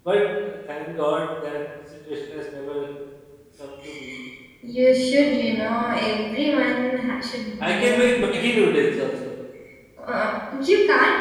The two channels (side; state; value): both; identical; correlation 1.00